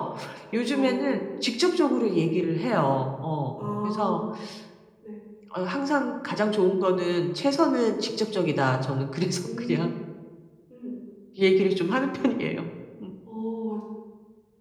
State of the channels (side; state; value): both; identical; correlation 1.00